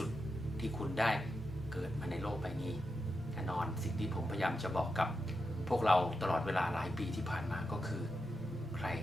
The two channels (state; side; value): normal; both; correlation 0.88